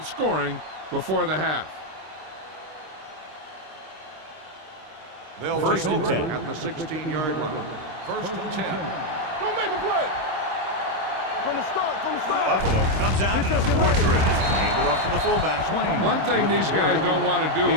scoring before the half. They'll First take and over 10. at the 16-yard line. First and 10. Don't make a play. From the start. Buffalo comes out in a fourth drift. Handed off to the fullback. One thing these guys don't want to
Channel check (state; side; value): late; left; 26 ms